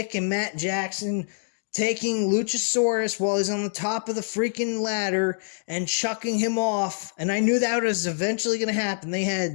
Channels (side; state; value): right; silent; digital silence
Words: and Matt Jackson taking Luchasaurus while he's on the top of the freaking ladder and chucking him off. And I knew that was eventually going to happen. They